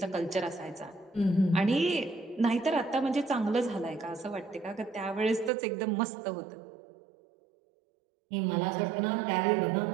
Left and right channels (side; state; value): left; drops out; at 5.5 s